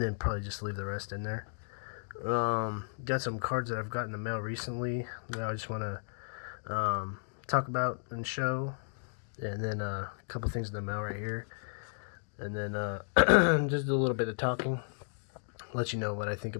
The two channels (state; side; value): silent; right; digital silence